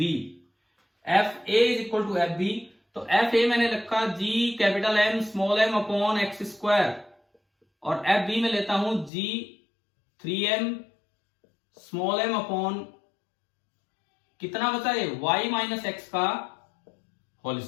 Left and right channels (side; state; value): right; drops out; at 9.1 s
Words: FA is equal to FB, तो FA मैंने रखा G capital M small m upon x square, और FB में लेता हूं G 3m small m upon कितना बचा है y माइनस एक्स का होल